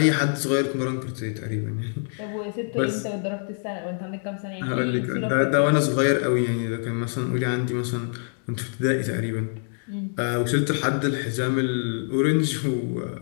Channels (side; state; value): right; silent; 62 dB below the other